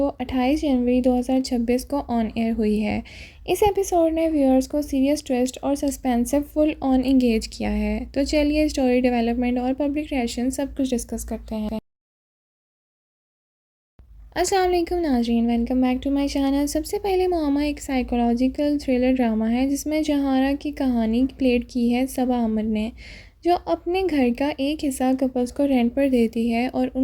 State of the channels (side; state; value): both; identical; correlation 1.00